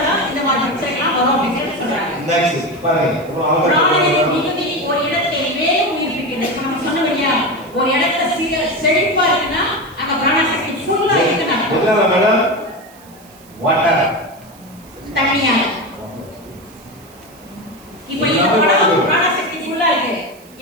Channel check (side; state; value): right; noise; hiss, 25 dB below the sound